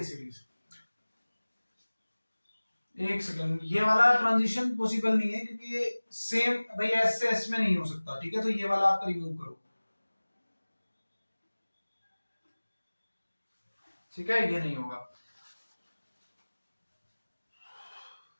सीरीज। एक सेकंड, ये वाला ट्रांजिशन पॉसिबल नहीं है क्योंकि ये सेम भाई एस से एस में नहीं हो सकता, ठीक है, तो ये वाला आप रिमूव करो, ठीक है, ये नहीं होगा।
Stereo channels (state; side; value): inverted; both; correlation -1.00